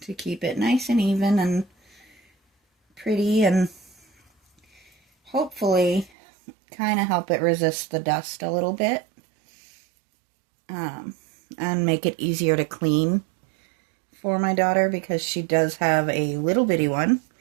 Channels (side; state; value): left; drops out; at 6.1 s